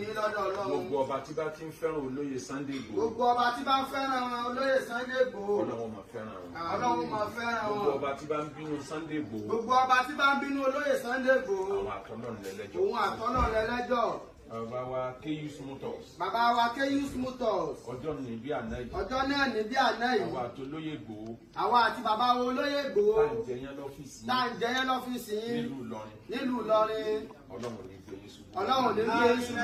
lọ́dọ̀ Ọlọ́run. Gbogbo ọba tí bá ti ń fẹ́ràn olóyè Sunday Igboho. Gbogbo ọba tí bá ń fẹ́ràn olóyè Sunday Igboho. Ọlọ́run máa fẹ́ràn wọn. Ọlọ́run máa fẹ́ràn wọn. Gbogbo ọba tí bá ń bínú Sunday Igboho. Gbogbo ọba tí bá ń bínú olóyè Sunday Igboho. Àwọn àtọ́lọ́run lẹ́lẹ́jọ́. Òun àtọ́lọ́run lẹ́lẹ́jọ́. Bàbá wa Keyus Motors. Bàbá wa Keyus Motors. Ọjọ́ ní bí àná yìí. Ọjọ́ náà ní bí àná yìí. Àwa àti olóyè Igboho. Àwa àti bàbá wo olóyè Igboho. Tá à ń jẹyán lọ́fíìsì. Tá à ń jẹyán lọ́fíìsì yín. Nílùú Ìlọrin. Nílùú Ìlọrin. Ọlọ́run ní gbé yín ṣubú. Ọlọ́run ní gbé yín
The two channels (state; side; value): identical; both; correlation 1.00